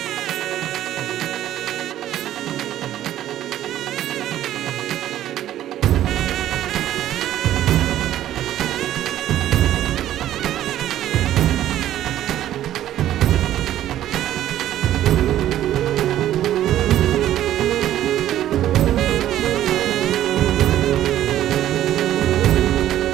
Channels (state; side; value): quieter; left; 12.5 dB